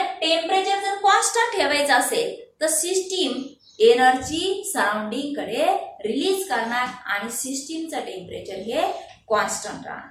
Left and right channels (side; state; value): both; identical; correlation 1.00